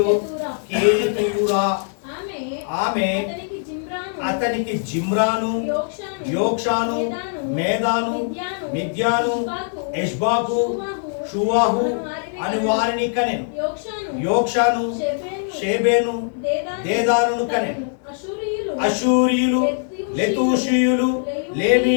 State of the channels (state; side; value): silent; right; digital silence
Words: కేతూరా. ఆమె అతనికి జిమ్రాను, యోక్షాను, మేదాను, మిద్యాను, ఎష్బాకు, షువాహు అని వారిని కనెను. యోక్షాను షేబేను, దేదానును కనెను. అషూరియులు, లెతూషీయులు,